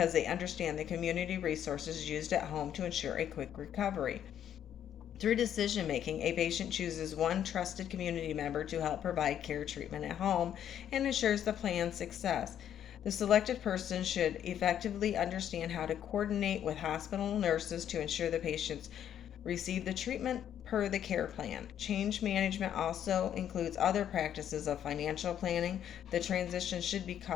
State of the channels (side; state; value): right; quieter; 9.9 dB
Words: they understand the community resources used at home to ensure a quick recovery. Through decision making, a patient chooses one trusted community member to help provide care treatment at home and ensures the plan's success. The selected person should effectively understand how to coordinate with hospital nurses to ensure the patients receive the treatment per the care plan. Change management also includes other practices of financial planning. The transition should be